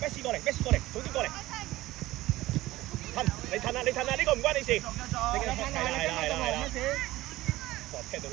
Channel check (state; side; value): quieter; left; 17.2 dB